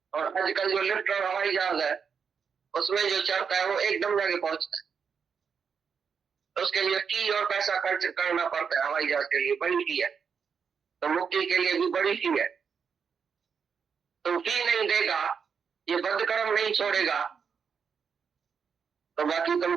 और आजकल जो लिफ्ट और हवाई जहाज है उसमें जो चढ़ता है वो एकदम जगह पहुंचता है, तो उसके लिए फी और पैसा खर्च करना पड़ता है। हवाई जहाज के लिए बड़ी फी है, तो मुक्ति के लिए भी बड़ी फी है। तो फी नहीं देगा, ये बद्ध कर्म नहीं छोड़ेगा, तो बाकी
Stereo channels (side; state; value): left; quieter; 6.4 dB